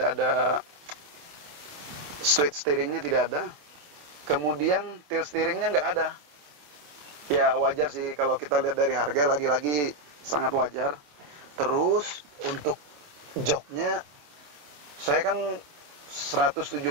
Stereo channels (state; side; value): late; left; 27 ms